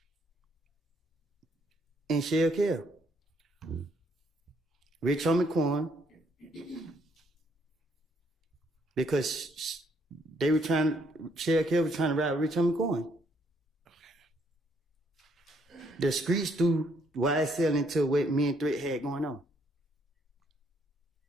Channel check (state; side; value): normal; both; correlation 0.70